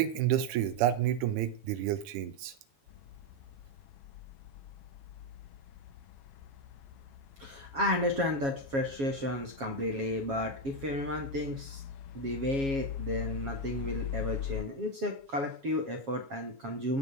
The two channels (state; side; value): late; left; 7.1 ms